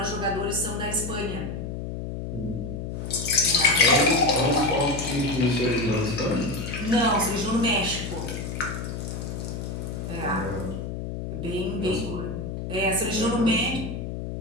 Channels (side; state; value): left; noise; hum, 6 dB below the sound